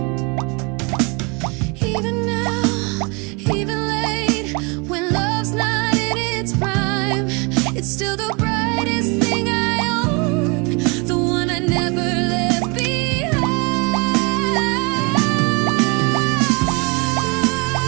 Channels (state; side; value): quieter; left; 30.3 dB